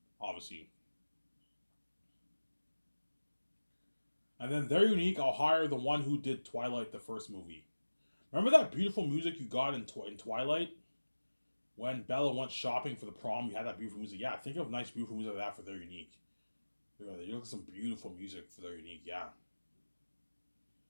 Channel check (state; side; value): inverted; both; correlation -1.00